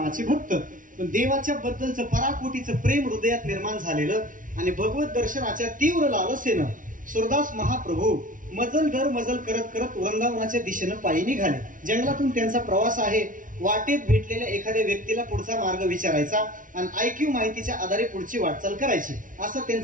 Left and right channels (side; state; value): left; late; 0.38 ms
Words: भक्त, पण देवाच्या बद्दलचं पराकोटीचं प्रेम हृदयात निर्माण झालेलं आणि भगवत दर्शनाच्या तीव्र लालसेनं सुरदास महाप्रभू मजल दर मजल करत करत वृंदावनाच्या दिशेनं पायी निघाले. जंगलातून त्यांचा प्रवास आहे. वाटेत भेटलेल्या एखाद्या व्यक्तीला पुढचा मार्ग विचारायचा आणि IQ माहितीच्या आधारे पुढची वाटचाल करायची, असा